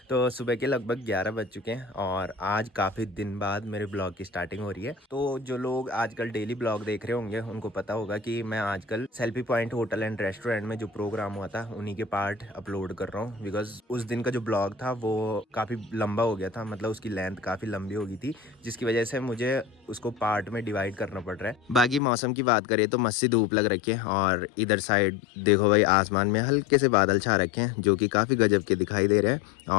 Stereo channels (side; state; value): right; drops out; at 22.0 s